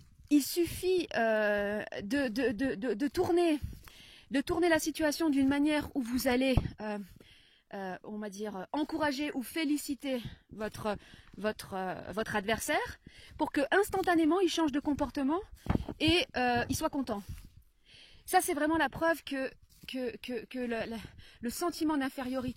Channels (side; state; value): both; identical; correlation 1.00